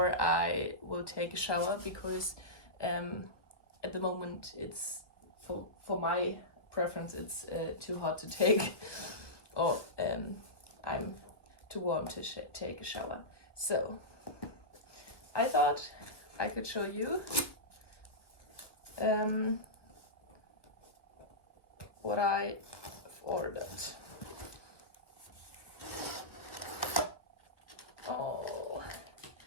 I will take a shower, because at the moment it's for my preference it's too hot to take, or I'm too warm to take a shower. So I thought I could show you what I've ordered. Oh,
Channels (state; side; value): late; right; 1.3 ms